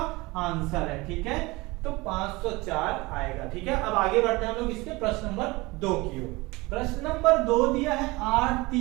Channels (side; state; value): left; quieter; 22.8 dB